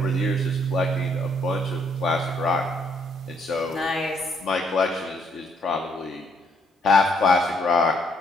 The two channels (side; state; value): both; normal; correlation 0.69